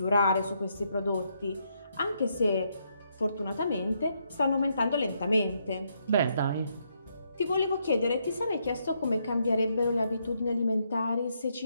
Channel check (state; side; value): inverted; both; correlation -0.76